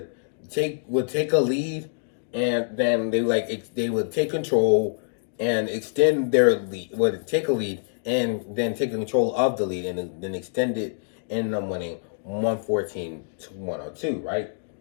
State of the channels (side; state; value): right; silent; digital silence